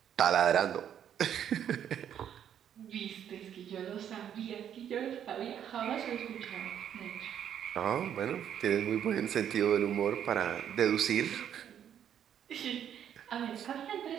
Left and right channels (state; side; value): quieter; left; 9.4 dB